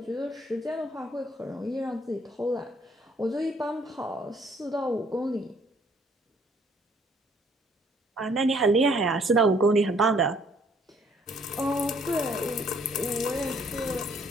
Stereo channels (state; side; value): normal; both; correlation 0.63